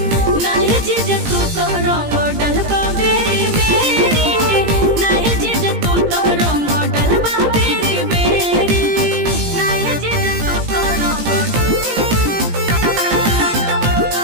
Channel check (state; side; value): late; left; 17 ms